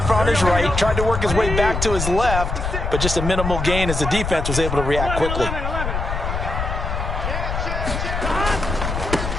on his right, tried to work his way back to his left, but just a minimal gain as the defense was able to react quickly.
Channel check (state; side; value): noise; left; rumble, 3 dB below the sound